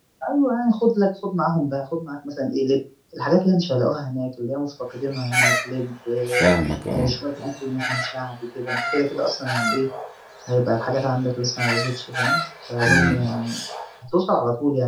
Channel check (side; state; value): both; identical; correlation 1.00